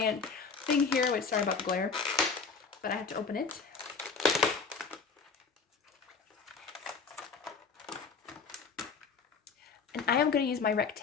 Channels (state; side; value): quieter; right; 5.2 dB